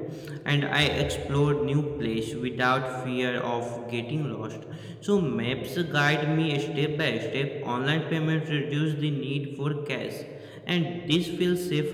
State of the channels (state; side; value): identical; both; correlation 1.00